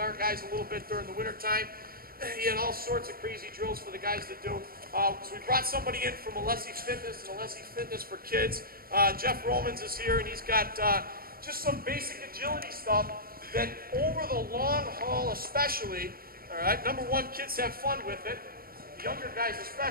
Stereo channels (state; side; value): late; left; 0.43 ms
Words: guys a little bit during the winter time. He had all sorts of crazy drills for the guys to do. So we brought somebody in from Alessi Fitness and Alessi Fitness for Kids. Jeff Romans is here, and he's got just some basic agility stuff that over the long haul especially, all right, number one, kids have fun with it. The younger guys